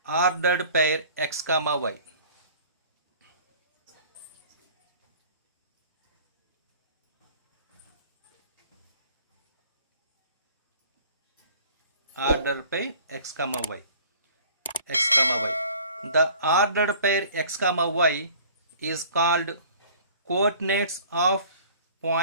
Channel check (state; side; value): inverted; both; correlation -0.49